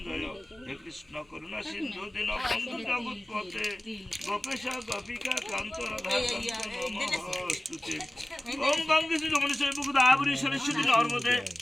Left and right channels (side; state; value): both; normal; correlation 0.97